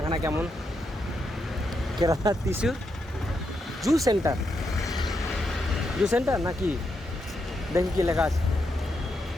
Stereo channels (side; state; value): both; normal; correlation 0.82